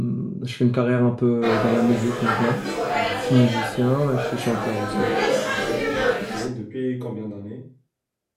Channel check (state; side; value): identical; both; correlation 1.00